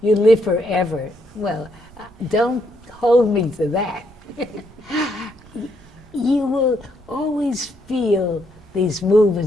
you live forever. Well, don't hold me to that. You will always feel these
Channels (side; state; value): right; noise; rumble, 24 dB below the sound